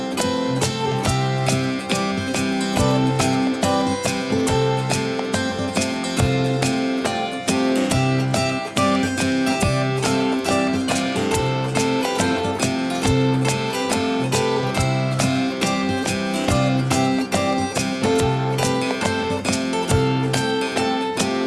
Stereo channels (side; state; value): both; identical; correlation 1.00